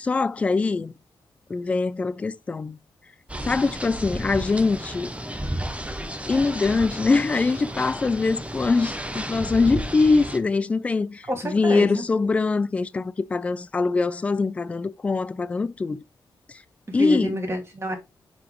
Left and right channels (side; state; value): right; quieter; 3.1 dB